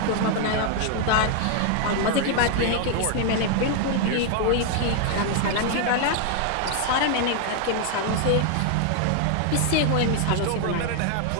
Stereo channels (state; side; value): different; both; correlation 0.00